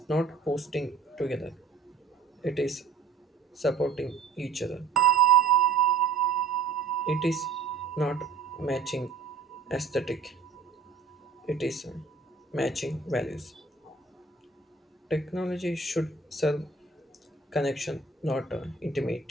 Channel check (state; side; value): quieter; left; 4.7 dB